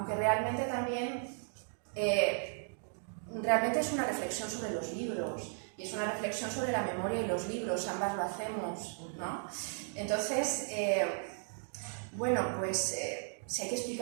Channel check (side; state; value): left; silent; 54 dB below the other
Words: realmente también realmente es una reflexión sobre los libros y es una reflexión sobre la memoria y los libros, ambas lo hacemos, ¿no? Entonces, bueno, pues si hay que